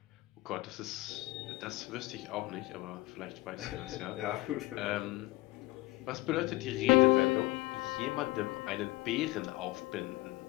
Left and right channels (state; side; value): quieter; right; 18.8 dB